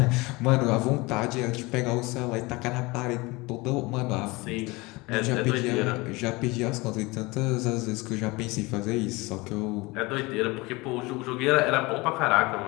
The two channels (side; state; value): right; quieter; 23.6 dB